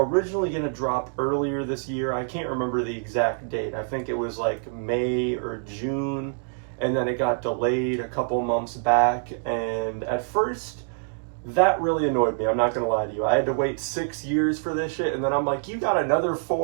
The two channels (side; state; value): left; silent; digital silence